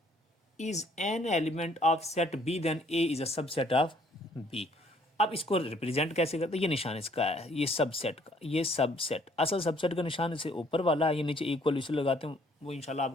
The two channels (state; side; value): normal; both; correlation 0.63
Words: is an element of set B, then A is a subset of B. अब इसको रिप्रेजेंट कैसे करते हैं? ये निशान इसका है, ये सबसेट का, ये सबसेट, असल सबसेट का निशान इसे ऊपर वाला है, ये नीचे इक्वल इसे लगाते हैं, वो इंशाल्लाह